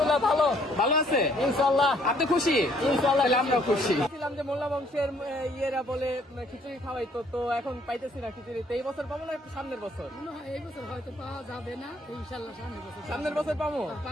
ভালো। ভালো আছে ইনশাআল্লাহ। আপনি খুশি? ইনশাআল্লাহ আমরা খুশি। ছিলাম যে মোল্লা বংশের ইয়েরা বলে খিচুড়ি খাওয়াইতো, তো এখন পাইতেছি না খিচুড়ি। তো এই বছর পাবো না সামনের বছর? এই বছর হয়তো পাওয়া যাবে না, ইনশাআল্লাহ সামনের বছর পাবো।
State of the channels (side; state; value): both; normal; correlation 0.64